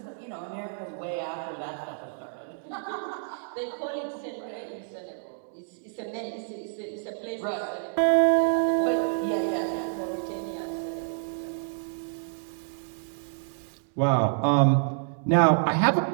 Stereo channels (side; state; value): left; silent; digital silence